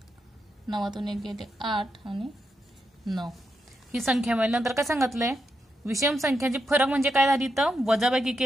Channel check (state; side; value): normal; both; correlation 0.84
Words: 9तून 1 गेले 8 आणि 9 ही संख्या मिळाली. नंतर काय सांगितलंय? विषम संख्याची फरक म्हणजे काय झाली? तर वजाबाकी